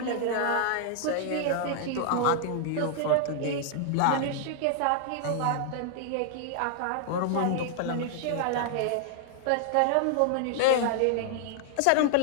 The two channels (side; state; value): both; different; correlation -0.01